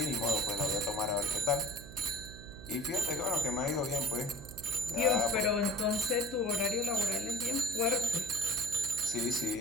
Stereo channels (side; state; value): right; noise; hum, 14 dB below the sound